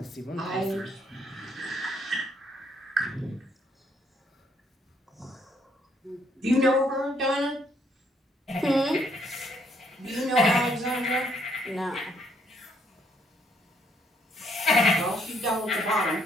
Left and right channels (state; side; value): normal; both; correlation 0.70